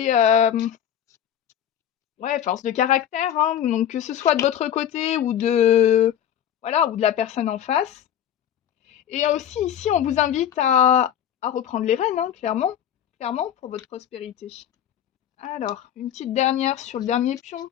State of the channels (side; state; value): right; quieter; 10.1 dB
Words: ouais, force de caractère, hein, donc que ce soit de votre côté ou de voilà, ou de la personne en face. Et aussi ici, on vous invite à reprendre les rênes, hein, clairement, clairement pour votre prospérité. Alors, une petite dernière sur le dernier pion,